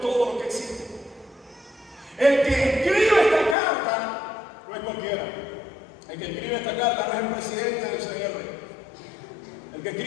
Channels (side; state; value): right; drops out; at 3.6 s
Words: lo que existe. El que escribe esta carta no es cualquiera. El que escribe esta carta no es el presidente del CR. El que